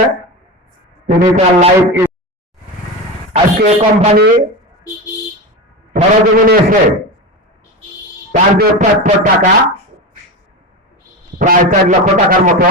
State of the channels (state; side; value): normal; both; correlation 0.22